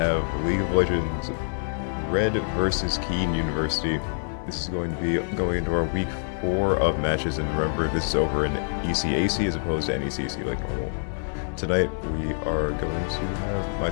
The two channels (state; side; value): silent; right; digital silence